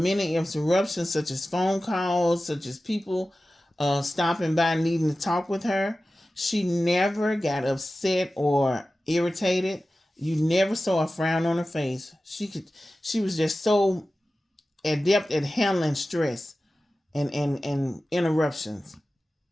interruptions, such as phone calls, such as people stopping by needing to talk with her. She never got upset or irritated. You never saw a frown on her face. She was just so adept at handling stress and interruptions.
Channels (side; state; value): both; normal; correlation 0.95